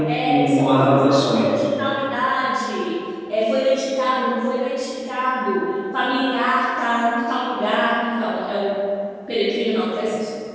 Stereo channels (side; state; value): both; identical; correlation 1.00